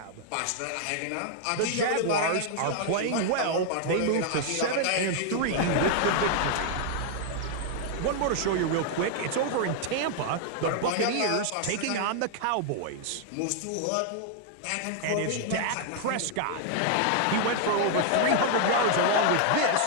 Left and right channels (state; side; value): different; both; correlation -0.01